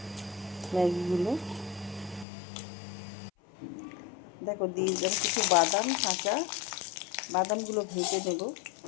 ম্যাগিগুলো। দেখো দিয়ে দিলাম কিছু বাদাম, কাঁচা বাদামগুলো ভেজে নেব,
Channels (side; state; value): right; drops out; at 2.2 s